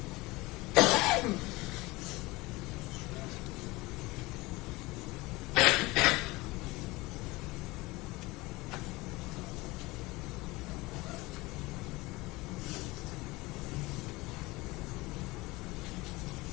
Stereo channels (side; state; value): right; quieter; 21.8 dB